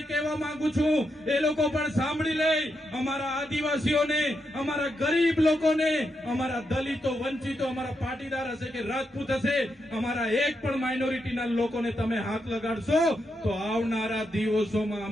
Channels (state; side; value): normal; both; correlation 0.83